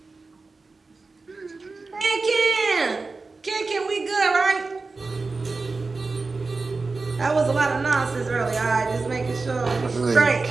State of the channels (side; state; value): left; quieter; 3.9 dB